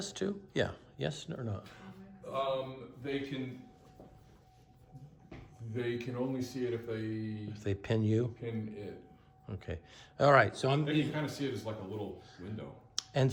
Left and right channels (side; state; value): both; identical; correlation 1.00